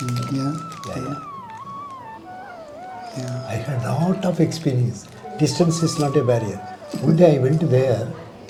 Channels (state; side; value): identical; both; correlation 1.00